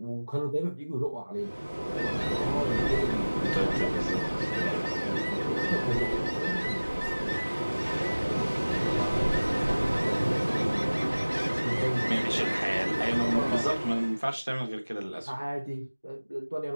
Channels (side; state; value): both; inverted; correlation -1.00